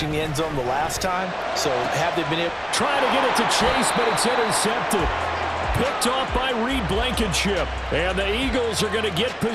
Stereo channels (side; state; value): both; identical; correlation 1.00